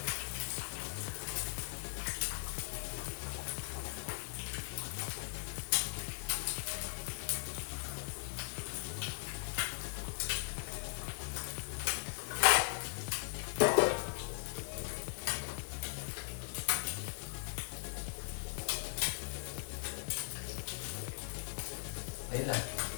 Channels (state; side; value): silent; right; digital silence